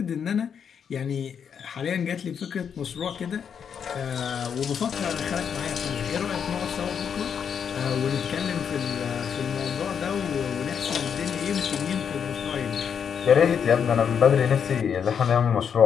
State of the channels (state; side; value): quieter; right; 7.4 dB